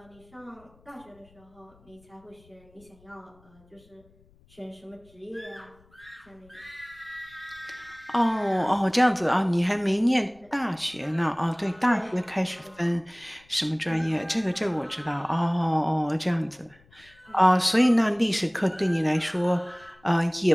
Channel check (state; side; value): noise; left; rumble, 30 dB below the sound